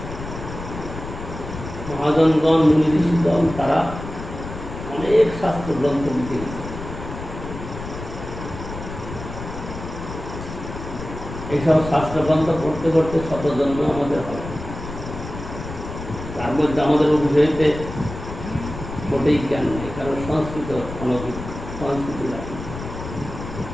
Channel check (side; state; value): left; noise; rumble, 10 dB below the sound